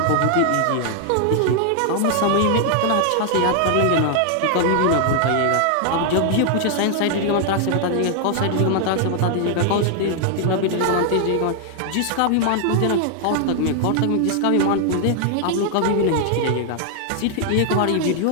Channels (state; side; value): different; both; correlation 0.00